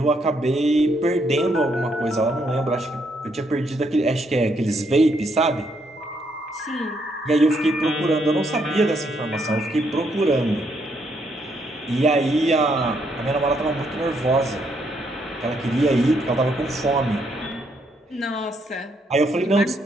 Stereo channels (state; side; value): normal; both; correlation 0.74